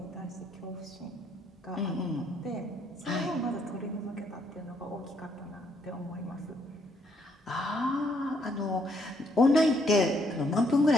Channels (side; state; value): both; normal; correlation 0.71